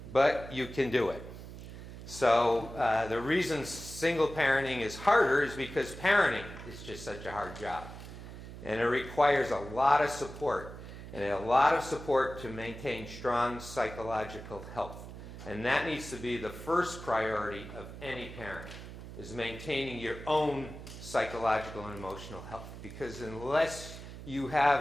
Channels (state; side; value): noise; right; hum, 12 dB below the sound